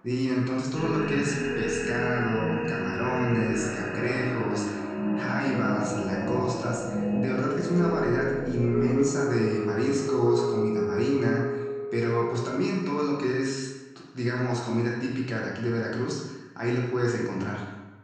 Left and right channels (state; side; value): identical; both; correlation 1.00